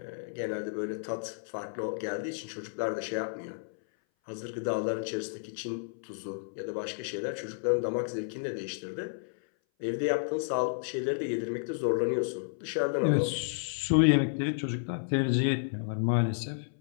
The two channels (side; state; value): right; silent; 57 dB below the other